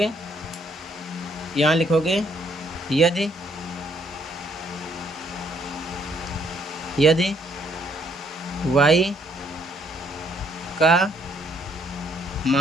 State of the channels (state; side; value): normal; both; correlation 0.68